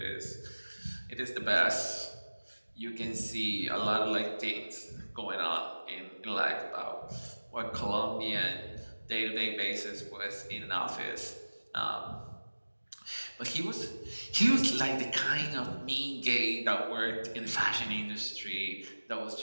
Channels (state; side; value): inverted; both; correlation -1.00